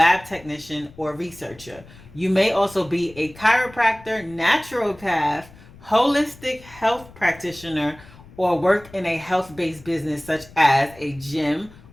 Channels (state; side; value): noise; left; rumble, 22 dB below the sound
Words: technician, or researcher. You may also be a chiropractor, naturopath, holistic health practitioner, or work in a health-based business such as a gym